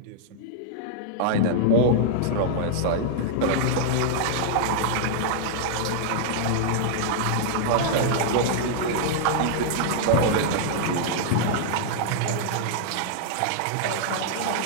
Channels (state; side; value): different; both; correlation -0.01